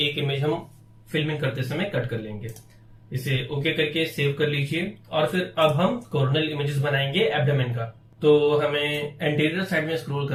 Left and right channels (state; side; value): identical; both; correlation 1.00